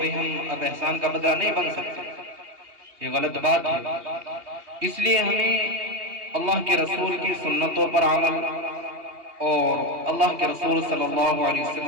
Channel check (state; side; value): late; left; 2.8 ms